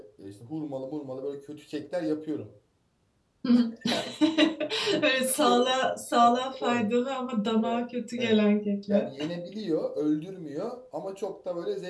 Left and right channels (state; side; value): identical; both; correlation 1.00